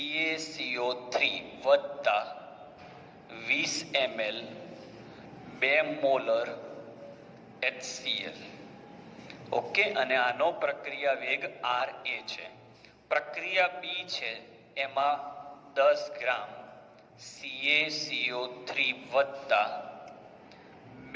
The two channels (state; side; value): identical; both; correlation 1.00